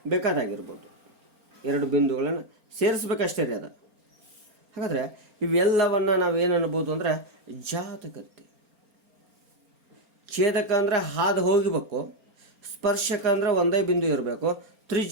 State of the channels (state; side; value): late; left; 4.4 ms